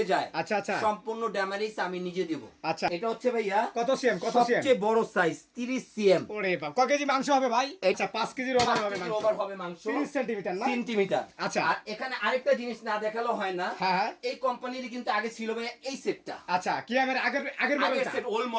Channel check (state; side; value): identical; both; correlation 1.00